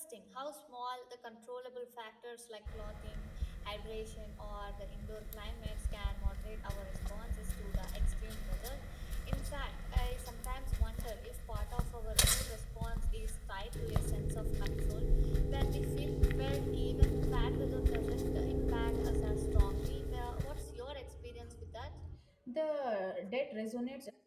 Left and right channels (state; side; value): identical; both; correlation 1.00